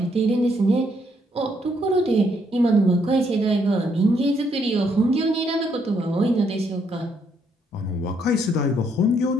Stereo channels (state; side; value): normal; both; correlation 0.72